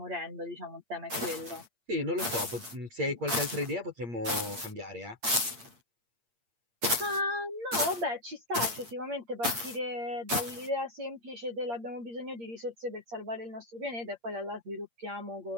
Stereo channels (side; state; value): left; late; 8.6 ms